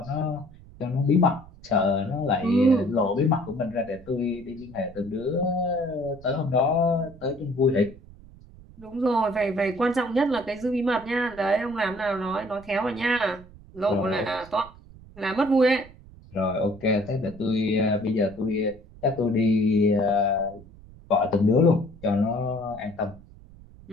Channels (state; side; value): noise; right; rumble, 21 dB below the sound